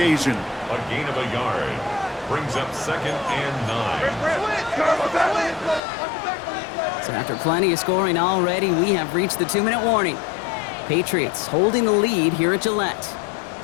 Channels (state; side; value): drops out; right; at 5.8 s